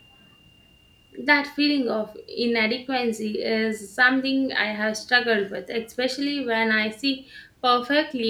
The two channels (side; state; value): both; identical; correlation 1.00